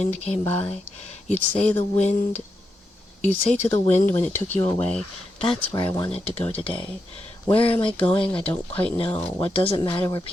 came by. You'd say to the wind when it took you away, that's where I wanted to go today. Where am I going? I don't quite know. What does it matter where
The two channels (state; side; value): normal; both; correlation 0.85